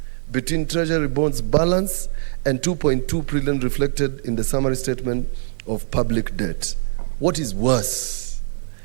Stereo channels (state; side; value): silent; left; digital silence